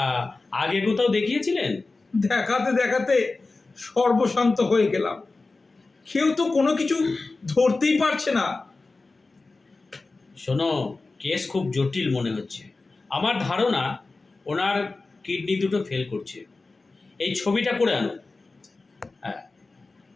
আগে কোথাও দেখিয়েছিলেন? দেখাতে দেখাতে সর্বশান্ত হয়ে গেলাম। কেউ তো কোনো কিছু ধরতেই পারছে না। শোনো, কেস খুব জটিল মনে হচ্ছে। আমার ধারণা ওনার কিডনি দুটো ফেল করছে। এই ছবিটা করে আনুন। হ্যাঁ,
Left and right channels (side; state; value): right; quieter; 3.6 dB